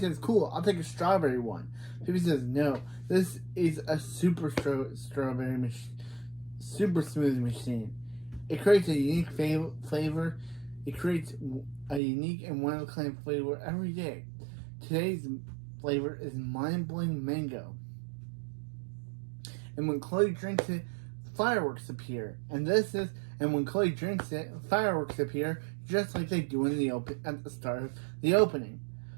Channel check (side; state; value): left; drops out; at 12.0 s